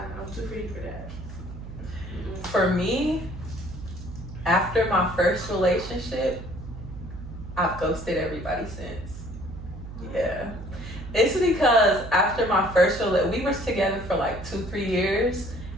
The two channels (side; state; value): right; noise; hum, 11 dB below the sound